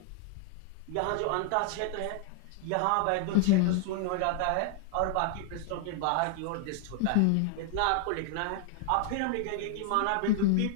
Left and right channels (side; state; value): both; different; correlation 0.00